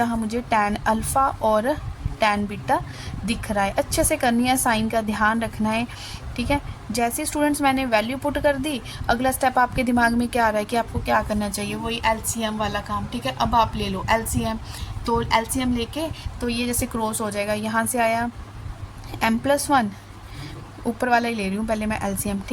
मुझे tan अल्फ़ा और tan बीटा दिख रहा है। अच्छे से करनी है, साइन का ध्यान रखना है, ठीक है। जैसे स्टूडेंट्स मैंने वैल्यू पुट कर दी, अगला स्टेप आपके दिमाग में क्या आ रहा है कि आपको क्या करना चाहिए, वही LCM वाला काम, ठीक है। अब आप ले लो LCM, तो LCM लेके तो ये जैसे क्रॉस हो जाएगा, यहाँ से आया m+1, ऊपर वाला ही ले रही हूँ पहले मैं LCM,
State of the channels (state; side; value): identical; both; correlation 1.00